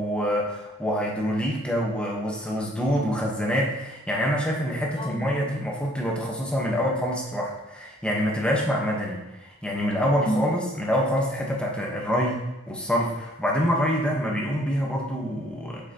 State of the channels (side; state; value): both; normal; correlation 0.61